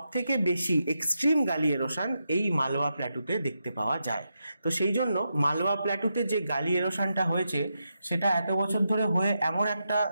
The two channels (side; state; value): both; inverted; correlation -0.86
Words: থেকে বেশি এক্সট্রিম গালি এরোশন এই মালওয়া প্ল্যাটুতে দেখতে পাওয়া যায়। তো সেই জন্য মালওয়া প্ল্যাটুতে যে গালি এরোশনটা হয়েছে সেটা এত বছর ধরে হয়ে এমন একটা